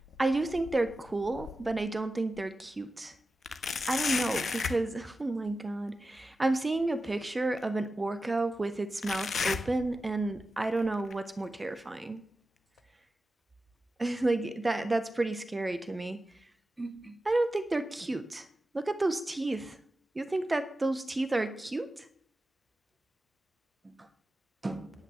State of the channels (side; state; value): both; normal; correlation 0.93